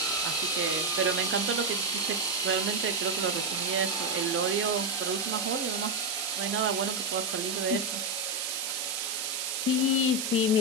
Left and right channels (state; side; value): noise; right; hiss, 2 dB below the sound